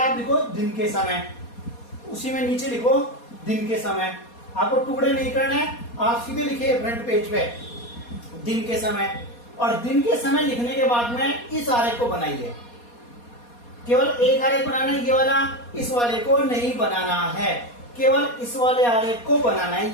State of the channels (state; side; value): late; right; 4.2 ms